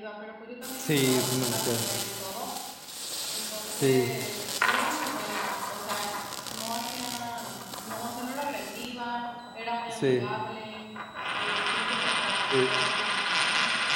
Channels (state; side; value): identical; both; correlation 1.00